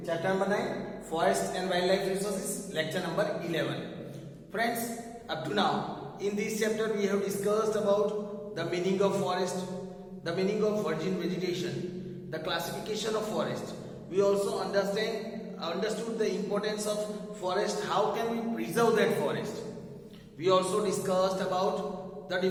chapter number 9, Forest and Wildlife Resources, lecture number 11. Friends, up to now, in this chapter we have discussed about the meaning of forest, the meaning of virgin vegetation, the classification of forest. We also understood the importance of forest, how can we preserve that forest. We also discussed about the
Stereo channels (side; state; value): both; identical; correlation 1.00